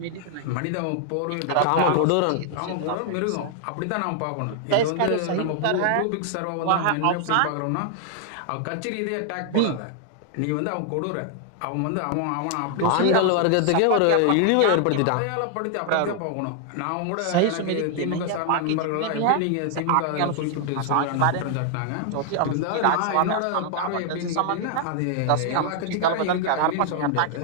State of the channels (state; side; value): different; both; correlation 0.00